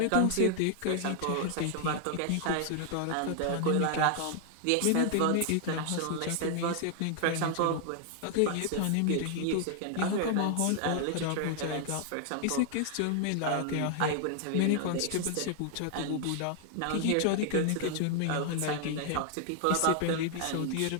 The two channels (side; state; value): both; different; correlation 0.00